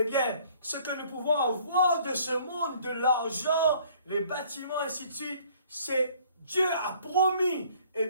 bien, ce que nous pouvons avoir de ce monde, de l'argent, les bâtiments, ainsi de suite, c'est Dieu a promis, eh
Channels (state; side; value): inverted; both; correlation -0.57